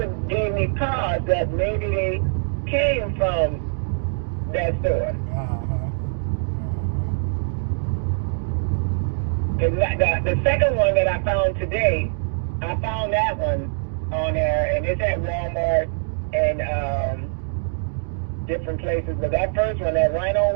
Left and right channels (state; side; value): silent; left; digital silence